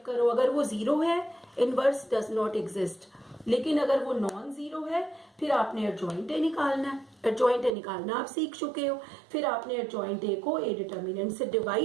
करो, अगर वो 0 है इनवर्स डज नॉट एग्जिस्ट। लेकिन अगर वो नॉन जीरो है फिर आपने एडजॉइंट ए निकालना है। एडजॉइंट ए निकालना आप सीख चुके हो, फिर आपने एडजॉइंट ए को ए डिटर्मिनेंट से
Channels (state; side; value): drops out; left; at 7.8 s